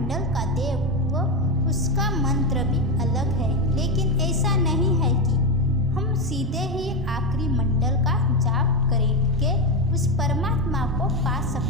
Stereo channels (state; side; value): normal; both; correlation 0.12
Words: का देव व उसका मंत्र भी अलग है, लेकिन ऐसा नहीं है कि हम सीधे ही आखिरी मंडल का जाप करके उस परमात्मा को पा